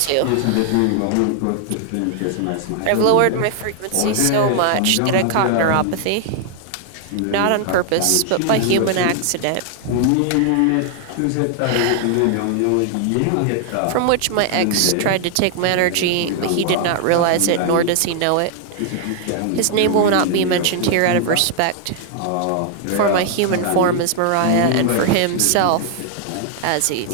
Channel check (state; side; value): different; both; correlation 0.00